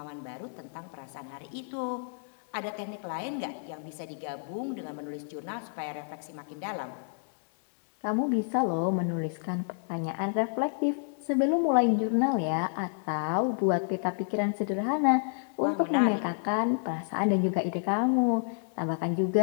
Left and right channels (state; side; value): silent; right; digital silence